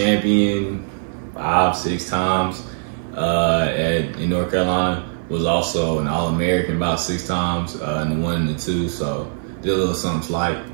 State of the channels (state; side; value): silent; left; 55 dB below the other